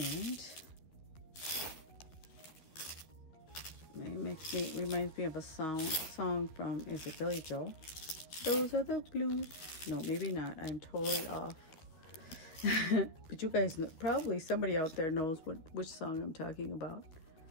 it reminds me of a song from, is it Billy Joel? Those are the blues. No, maybe not. I'm totally off. But you guys know, probably somebody out there knows which song I'm talking about.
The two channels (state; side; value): late; right; 12 ms